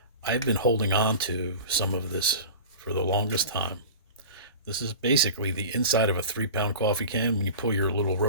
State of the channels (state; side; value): inverted; both; correlation -0.35